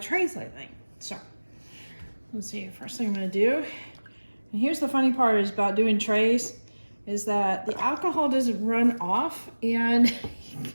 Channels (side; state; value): both; inverted; correlation -1.00